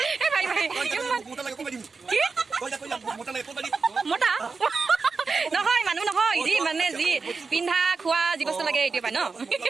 মোটা নহয় মানুহ নহয় যি মানে যি পিন্ধা খোৱা যি বস্তু লাগে এইটো পাই ন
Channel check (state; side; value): quieter; left; 4.5 dB